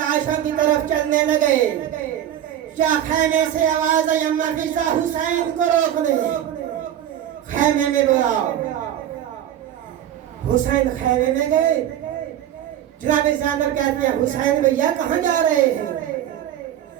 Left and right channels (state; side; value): quieter; left; 11.1 dB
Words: کی طرف چلنے لگے. کیا خیمے سے آواز آئی اما فضا حسین کو روک لے. خیمے میں بولا. حسین خیمے میں گئے. جناب زینب کہتے ہیں حسین بھیا کہاں جا رہے ہیں.